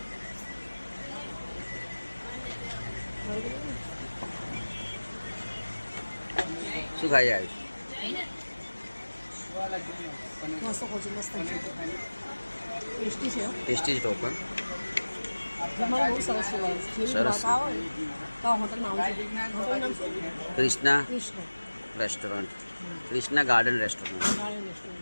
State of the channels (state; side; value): inverted; both; correlation -1.00